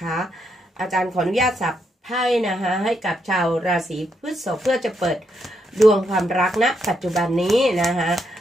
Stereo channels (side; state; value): both; normal; correlation 0.79